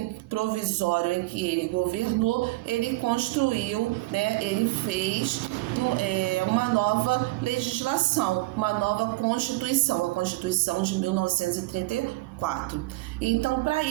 provisório em que ele governou, ele construiu, ele fez uma nova legislação, uma nova Constituição, a Constituição de 1934. Então, para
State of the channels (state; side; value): quieter; left; 21.1 dB